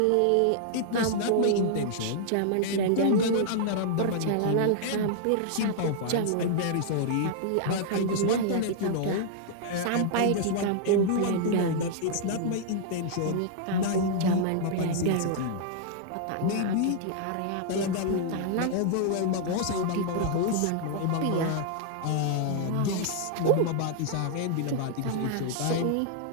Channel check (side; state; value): both; different; correlation -0.01